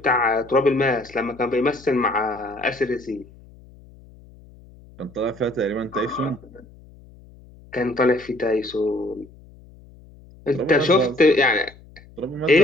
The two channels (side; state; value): left; noise; hum, 23 dB below the sound